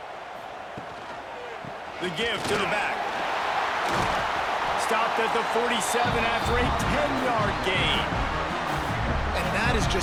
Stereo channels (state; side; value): identical; both; correlation 1.00